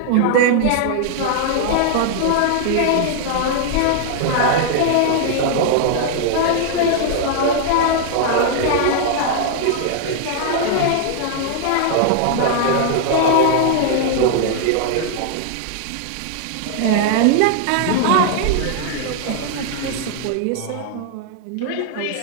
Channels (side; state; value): both; different; correlation 0.00